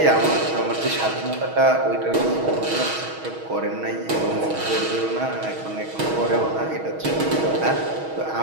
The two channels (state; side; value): late; left; 6.3 ms